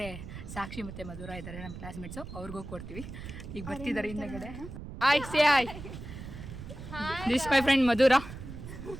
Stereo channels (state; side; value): noise; right; rumble, 11 dB below the sound